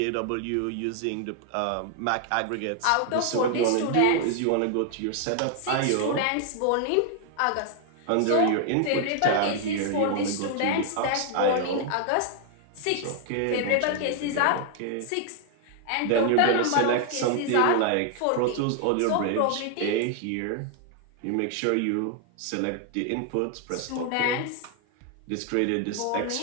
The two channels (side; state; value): both; different; correlation 0.00